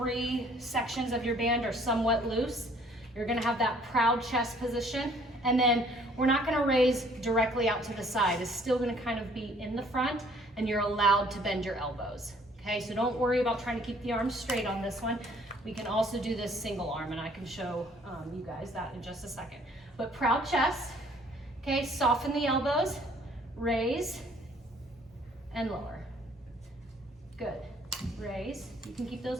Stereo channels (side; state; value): both; normal; correlation 0.59